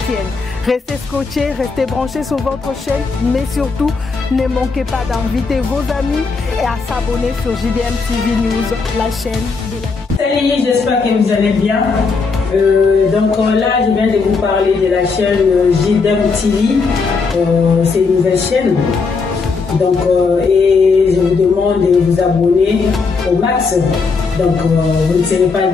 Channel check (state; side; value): quieter; right; 4.6 dB